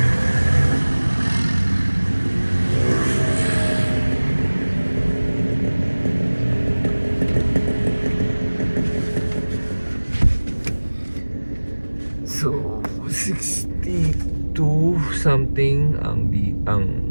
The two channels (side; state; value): both; inverted; correlation -1.00